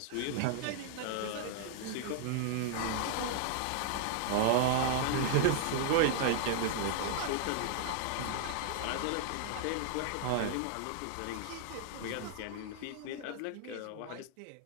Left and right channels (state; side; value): different; both; correlation -0.01